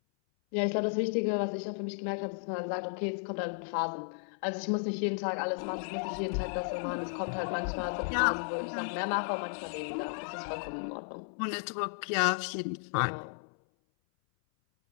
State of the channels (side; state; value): right; silent; 55 dB below the other